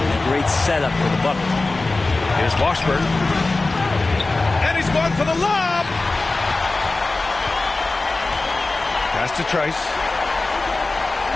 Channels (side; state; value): right; quieter; 3.3 dB